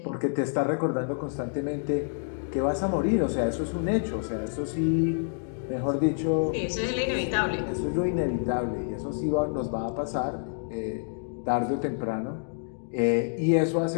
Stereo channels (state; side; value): silent; right; digital silence